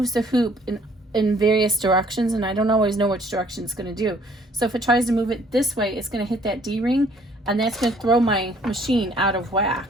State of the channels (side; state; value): both; normal; correlation 0.60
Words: the hoop in various directions, and I don't always know which direction it's going to do. So if it tries to move it this way, it's going to hit that D-ring, and that's going to throw my machine out of whack.